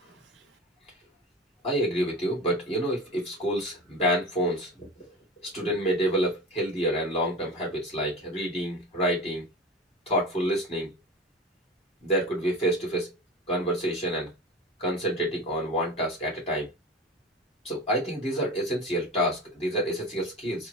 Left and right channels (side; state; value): both; normal; correlation 0.31